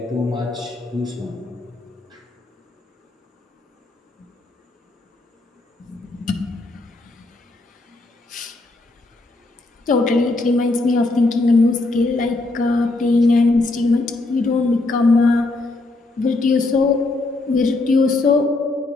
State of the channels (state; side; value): quieter; right; 3.1 dB